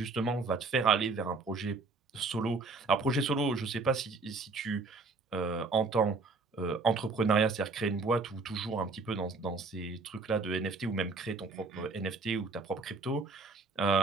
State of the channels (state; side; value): quieter; left; 3.9 dB